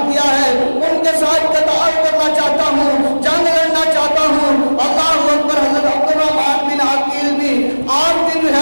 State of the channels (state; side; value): inverted; both; correlation -1.00